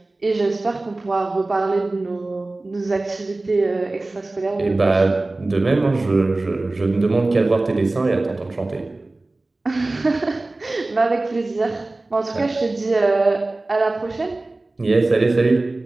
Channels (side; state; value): left; quieter; 3.0 dB